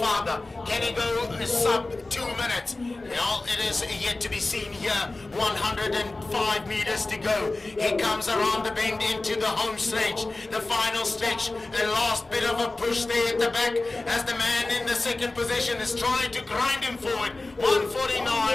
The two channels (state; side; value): quieter; right; 3.1 dB